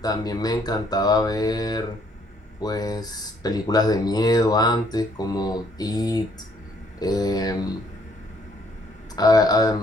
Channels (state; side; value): normal; both; correlation 0.66